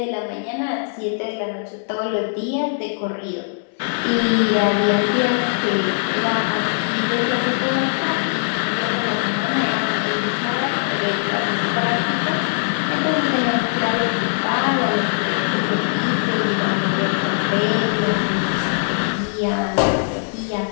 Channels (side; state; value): right; silent; 62 dB below the other